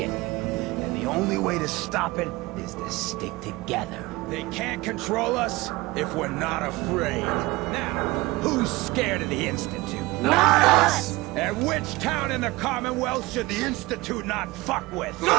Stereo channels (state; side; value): quieter; left; 21.1 dB